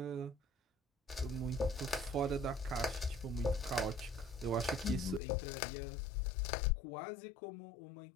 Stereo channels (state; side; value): drops out; right; at 5.2 s